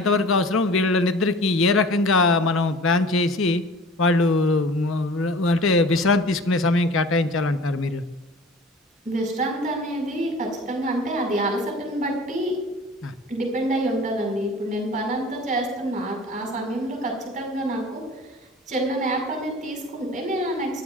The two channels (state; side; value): normal; both; correlation 0.43